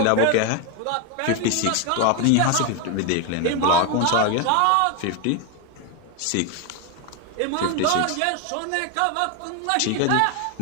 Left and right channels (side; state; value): both; different; correlation 0.02